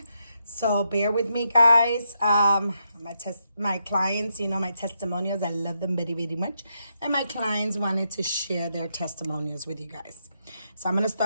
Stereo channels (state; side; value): inverted; both; correlation -0.82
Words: so bear with me guys. My clients, my testimonials, I love them very, very much. And my clients wanted to share their testimonials with you guys. So I'm going to